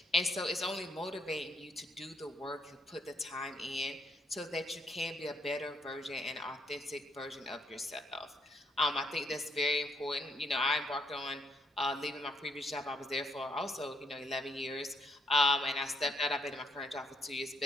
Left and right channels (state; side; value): normal; both; correlation 0.73